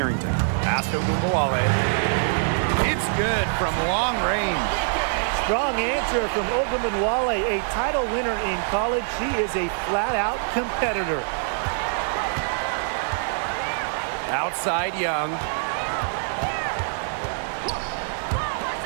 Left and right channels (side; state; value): left; silent; 62 dB below the other